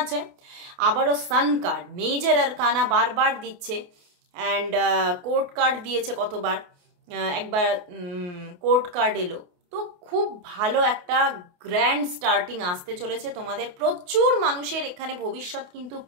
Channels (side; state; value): left; late; 28 ms